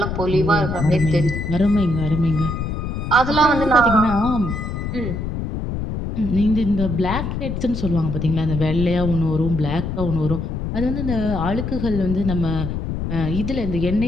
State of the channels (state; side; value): noise; left; rumble, 4 dB below the sound